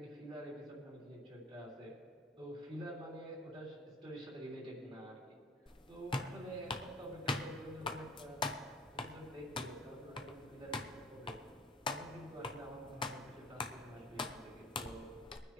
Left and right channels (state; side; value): normal; both; correlation 0.47